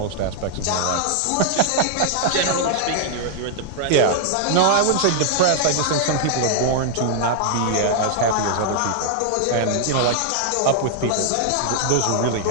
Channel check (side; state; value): both; different; correlation -0.01